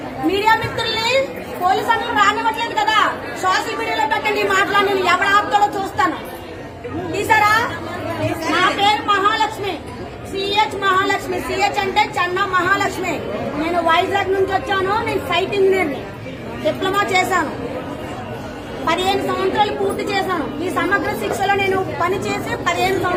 మీడియా మిత్రుల్ని పోలీసు అన్నలు రానివ్వట్లేదు కదా, సోషల్ మీడియాలో పెట్టండి. మాట్లాడి ఎవరు ఆపుతాడో చూస్తాను. తీసారా? నా పేరు మహాలక్ష్మి, సిహెచ్ మహాలక్ష్మి. సిహెచ్ అంటే చెన్న మహాలక్ష్మి. నేను వైజాగ్ నుంచి వచ్చాను. నేను సైట్ ఇంజనీర్ని, డిప్లొమా చేశాను. 15 సంవత్సరాలు పూర్తి చేశాను. ఈ సమగ్ర శిక్షలో నేను పనిచేసి 15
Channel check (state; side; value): identical; both; correlation 1.00